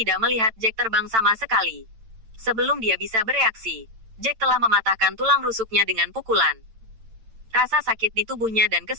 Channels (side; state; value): left; late; 8.9 ms